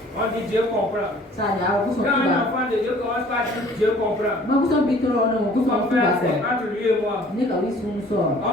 On dit Dieu comprend. Quand un enfant de Dieu commence par dire Dieu comprend, son frère, c'est entre lui et moi.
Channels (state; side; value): normal; both; correlation 0.53